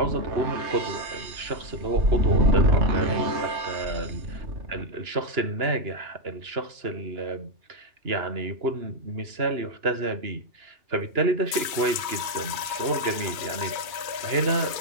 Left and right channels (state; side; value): late; left; 2.3 ms